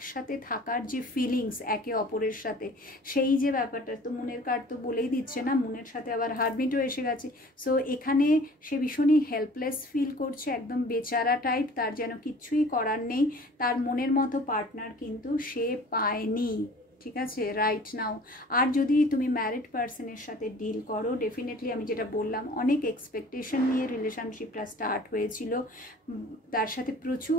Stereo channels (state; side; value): normal; both; correlation 0.47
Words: থাকার যে ফিলিংস একে অপরের সাথে, সেই যে ব্যাপারটা, তো মুনের কার্ড তো বলেই দিচ্ছে না, মুনের সাথে আবার হারমিটও এসে গেছে। সো এখানে সে ভীষণই হেল্পলেস ফিল করছে, একদম বেচারা টাইপ, তার যেন কিচ্ছুই করার নেই, তার মনের মতো পার্টনার কিন্তু সে পায়নি, ঠিক আছে, রাইট নাও। আর যদি তুমি ম্যারিড পার্সনের সাথে ডিল করো, ডেফিনেটলি আমি যেটা বললাম, অনেক এক্সপেকটেশন নিয়ে রিলেশনশিপটা স্টার্ট হয়েছিল, তার সাথে